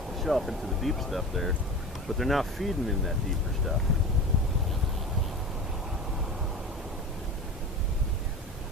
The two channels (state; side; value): normal; both; correlation 0.32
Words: the shelf into the deep stuff there. But they're not feeding in that deeper stuff.